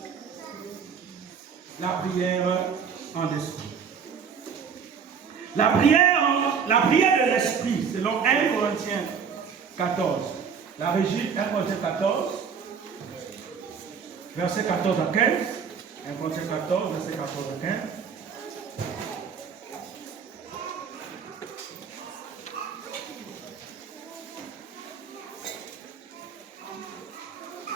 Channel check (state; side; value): quieter; left; 6.6 dB